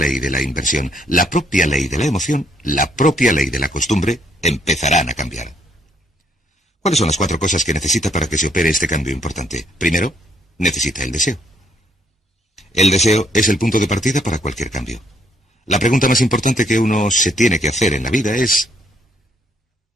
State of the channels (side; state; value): both; normal; correlation 0.69